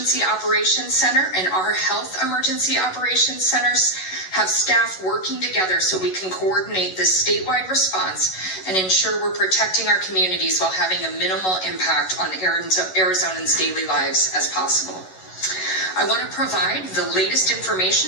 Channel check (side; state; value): right; late; 11 ms